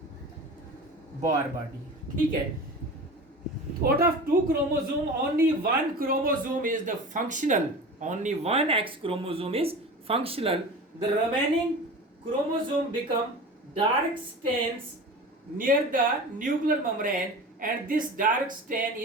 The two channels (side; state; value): both; normal; correlation 0.34